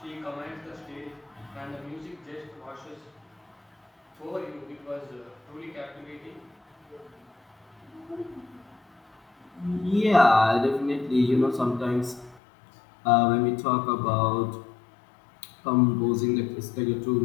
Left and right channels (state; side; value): drops out; right; at 12.4 s